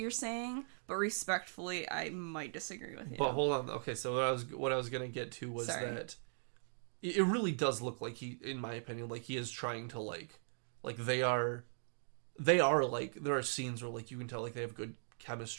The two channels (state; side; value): silent; left; digital silence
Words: saying, but respectfully, I might disagree with you. But hold on. Okay, so what I was gonna get to was that it really does look like he, in my opinion, like he is trying to like they are like, there are scenes where like you can tell like they have good